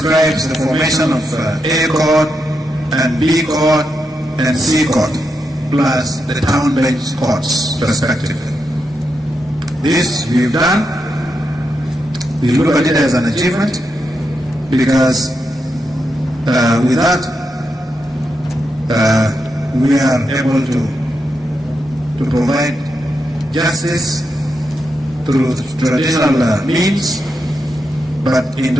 the formation of A court and B court and C court, plus the town bench courts, respectively. This we've done. We look at it as an achievement because with that we are able to provide justice through traditional means, but in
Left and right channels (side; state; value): both; normal; correlation 0.85